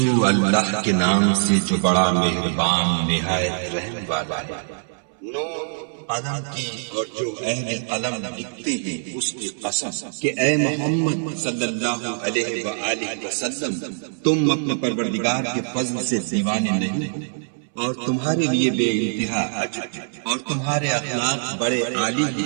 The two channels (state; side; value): silent; left; 63 dB below the other